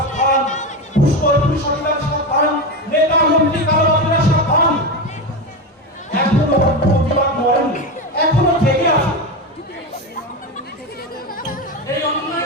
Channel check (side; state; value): both; normal; correlation 0.17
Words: পুষ্কর পুলিশ অফিসার, সাবধান নেতা মন্ত্রী কালোবাজারিরা সাবধান। এখনো প্রতিবাদ মরেননি, এখনো জেগে আছে। এই